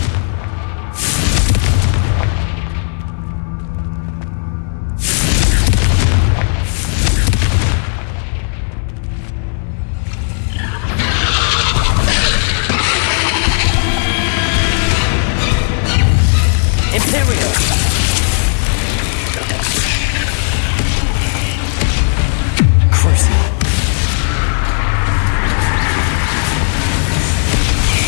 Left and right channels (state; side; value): silent; right; digital silence